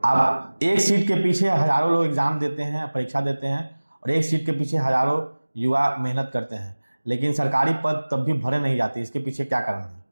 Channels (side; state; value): both; inverted; correlation -1.00